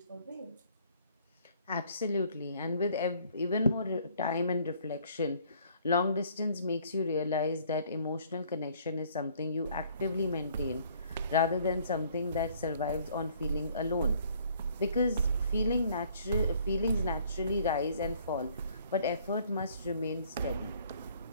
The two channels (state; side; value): inverted; both; correlation -0.60